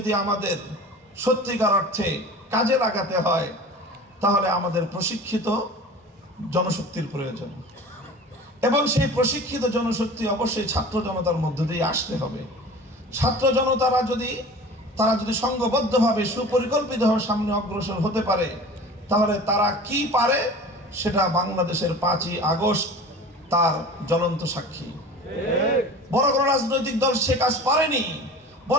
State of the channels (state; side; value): normal; both; correlation 0.39